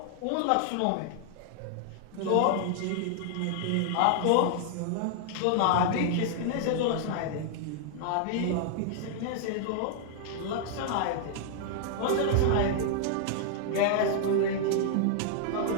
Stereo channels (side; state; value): both; different; correlation -0.01